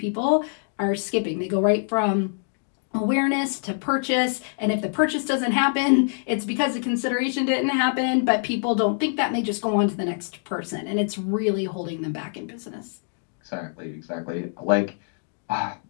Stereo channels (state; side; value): silent; right; digital silence